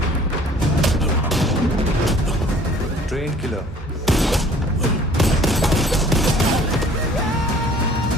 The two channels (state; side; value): normal; both; correlation 0.53